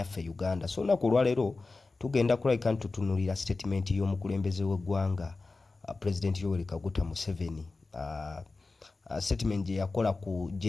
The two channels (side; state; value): right; quieter; 3.7 dB